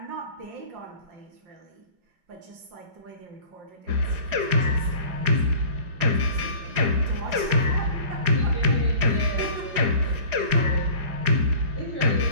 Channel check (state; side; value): late; left; 4.9 ms